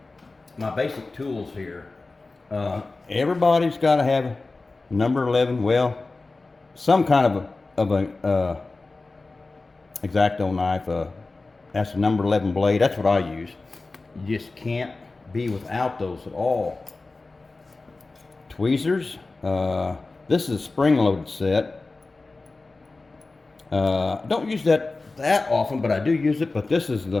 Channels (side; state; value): right; quieter; 3.5 dB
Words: basic tools here. Everybody's got to have number 11, well, some kind of a X-Acto knife. That's a number 11 blade. That's what I use. You just can't be without those at all. Tweezers. This is a spring-loaded set. Don't use that often, but I do use it. But this is